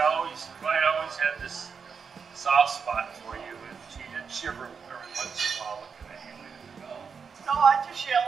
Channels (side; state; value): left; quieter; 5.9 dB